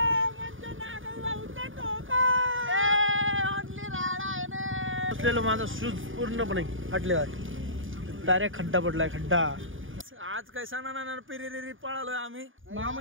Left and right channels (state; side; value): late; left; 0.58 ms